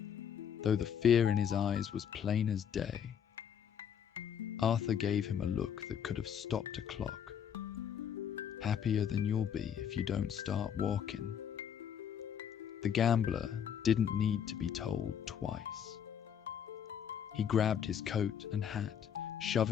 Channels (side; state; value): right; quieter; 8.4 dB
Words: though the fear in his eyes was plain as day. Arthur gave him a look that could have stopped a clock. "Happier than you'll be if you don't start walking." The gambler didn't need to be told twice. He grabbed his coat and hat,